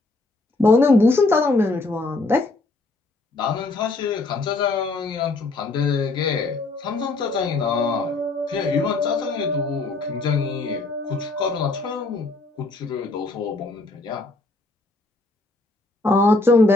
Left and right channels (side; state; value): right; quieter; 3.2 dB